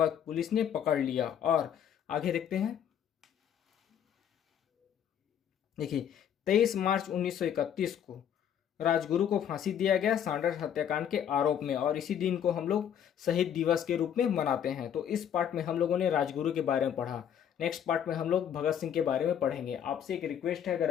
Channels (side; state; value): right; quieter; 9.1 dB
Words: पुलिस ने पकड़ लिया। और आगे देखते हैं। देखिए, 23 मार्च 1931 को राजगुरु को फांसी दिया गया सैंडर्स हत्याकांड के आरोप में और इसी दिन को हम लोग शहीद दिवस के रूप में मनाते हैं। तो इस पार्ट में हम लोगों ने राजगुरु के बारे में पढ़ा। नेक्स्ट पार्ट में हम लोग भगत सिंह के बारे में पढ़ेंगे। आपसे एक रिक्वेस्ट है, अगर